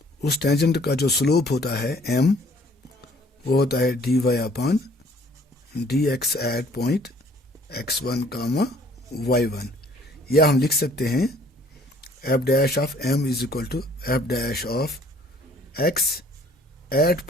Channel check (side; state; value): both; normal; correlation 0.58